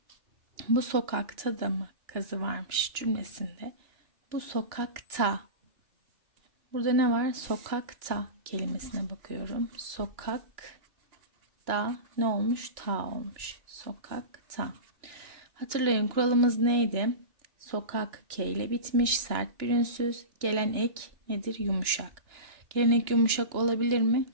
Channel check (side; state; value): left; late; 2.9 ms